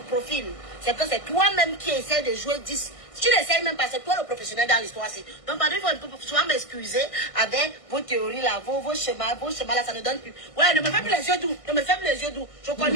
c'est que c'est toi-même qui essaie de jouer 10. Tu n'essayes même pas, c'est toi le professionnel dans l'histoire. Donc, pardon, il faut souvent m'excuser avec vos théories là, vos schémas là, ça ne donne plus. Ouais, ne me fais plus les yeux doux, ne me fais plus les yeux doux. Je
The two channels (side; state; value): right; late; 1.5 ms